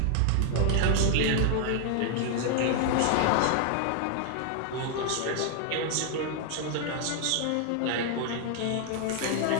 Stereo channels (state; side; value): different; both; correlation 0.00